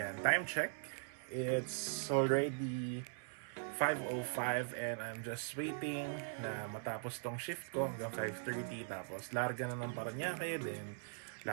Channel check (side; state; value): left; silent; 51 dB below the other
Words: time check. It's already 5:05 and I'm just waiting na matapos tong shift ko hanggang 5:30. Tapos larga na ng Parañaque, then